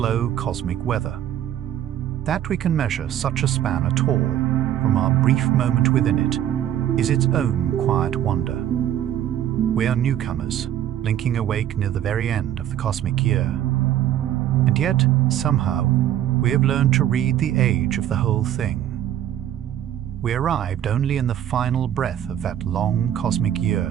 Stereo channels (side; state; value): left; quieter; 11.3 dB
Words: cosmic weather. That we can measure such a span at all, from our brief moment within it, is its own quiet wonder. We are newcomers, blinking awake near the very end of the cosmic year. And yet, somehow, we have learned to read the age of the whole thing. We arrived only in the final breath of that long cosmic